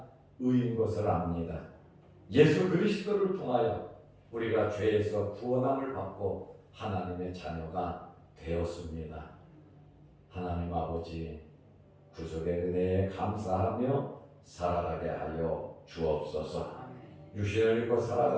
의인 것을 압니다. 예수 그리스도를 통하여 우리가 죄에서 구원함을 받고 하나님의 자녀가 되었습니다. 하나님 아버지, 구속의 은혜에 감사하며 살아가게 하여 주옵소서. 육신을 입고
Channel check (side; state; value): both; identical; correlation 1.00